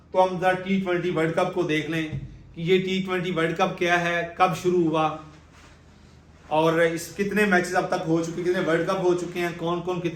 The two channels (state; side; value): identical; both; correlation 1.00